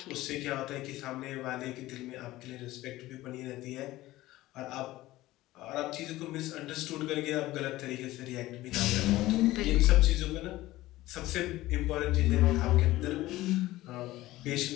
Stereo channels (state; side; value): quieter; right; 17.0 dB